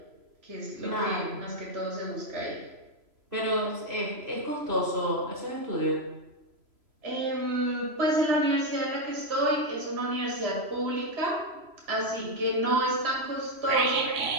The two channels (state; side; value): late; left; 3.0 ms